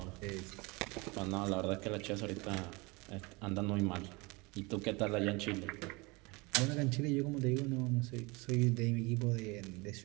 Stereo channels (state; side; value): quieter; left; 26.0 dB